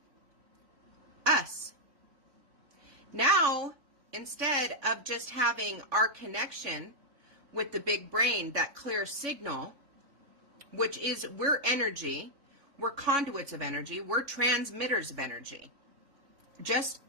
us. Now, instead of just having our connection with the big brain, that clear signal, which is we're energy, we're conduits of energy, we're transmitters of energy, just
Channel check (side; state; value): left; late; 3.6 ms